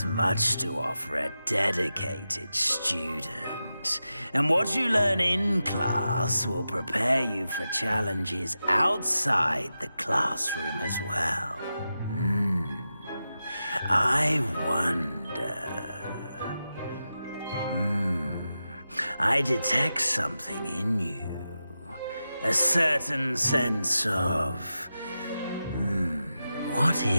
much to offer a dedicated student. And what you learn in class will prepare you for challenges outside the classroom as well. I wonder... I detect something in you. A certain sense of... what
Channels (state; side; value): inverted; both; correlation -0.91